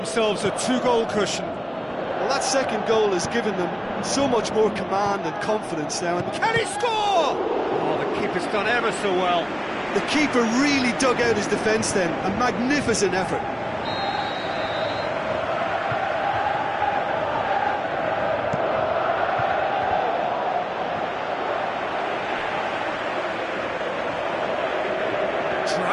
a 2-goal cushion. Well, that second goal has given them so much more command and confidence now. And can he score? Oh, the keeper's done ever so well. The keeper really dug out his defence then. A magnificent effort.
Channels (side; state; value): both; identical; correlation 1.00